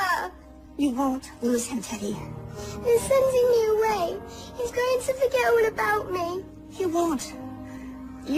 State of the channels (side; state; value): both; identical; correlation 1.00